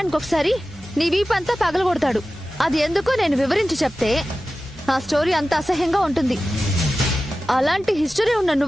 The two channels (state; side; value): normal; both; correlation 0.95